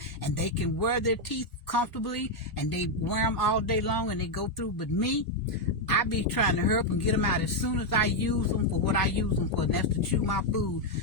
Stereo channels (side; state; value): both; normal; correlation 0.01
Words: and they can wear their teeth comfortably, and they wear them all day long, and they go through. But me, I be trying to hurry up and get them out. As soon as I use them for what I use them for, and that's to chew my food,